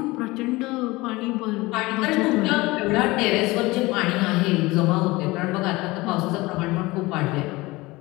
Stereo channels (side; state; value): right; quieter; 21.4 dB